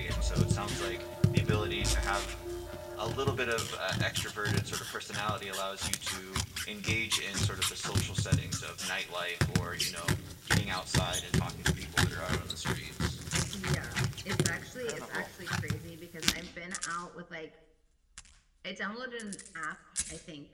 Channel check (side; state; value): both; identical; correlation 1.00